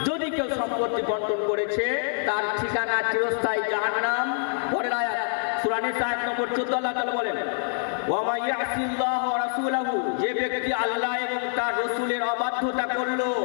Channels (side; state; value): right; silent; 61 dB below the other